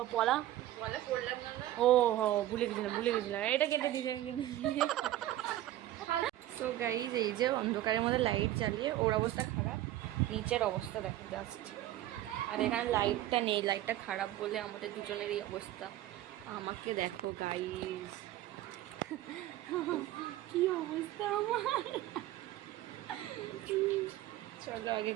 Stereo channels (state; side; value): quieter; left; 14.2 dB